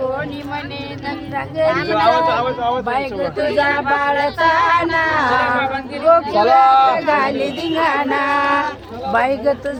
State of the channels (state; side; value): identical; both; correlation 1.00